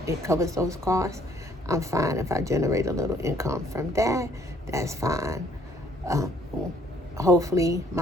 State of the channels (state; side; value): normal; both; correlation 0.63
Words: it covers those costs, I'm fine. If I generate a little income from that, that's fine. Hopefully